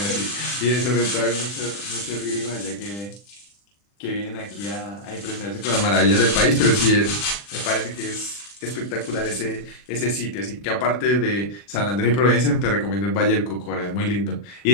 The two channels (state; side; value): late; right; 40 ms